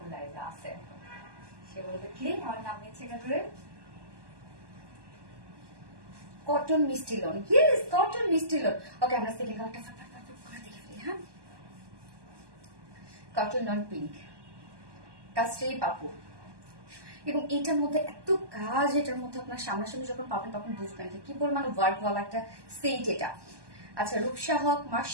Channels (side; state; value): left; late; 1.2 ms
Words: লাইজা আছে, সে বলবে কি আমার নাম নিচ্ছে করে। কটন মিষ্টি লোন, ইয়েস কটন মিষ্টি লোন। ওকে, আমরা সেকেন্ড কালারটা ফটাফট করে দেখে ফেলি। হ্যাঁ, কটন লন পিঙ্ক, কাস্টে পাপু। এবং এটার মধ্যে এত কাজ, এটার মধ্যে আপনার সামনাসামনি যখন পাবেন তখন বুঝবেন যে কি পরিমাণ ওয়ার্ক ওয়ালা একটা সেট এটা। আচ্ছা, রূপসা হক,